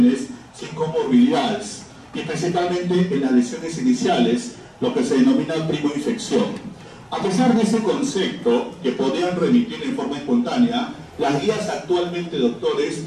sin comorbilidades, y principalmente en las lesiones iniciales, lo que se denomina primoinfección. A pesar de ese concepto, que podrían remitir en forma espontánea, las guías actualmente, doctores,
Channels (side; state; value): both; identical; correlation 1.00